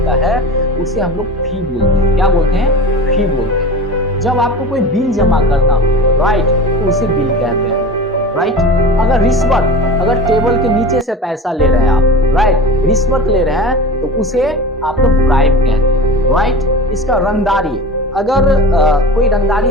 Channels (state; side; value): normal; both; correlation 0.34